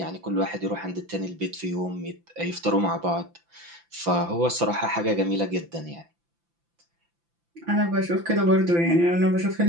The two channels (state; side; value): late; left; 5.9 ms